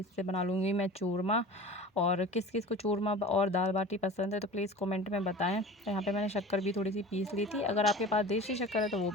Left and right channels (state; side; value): normal; both; correlation 0.38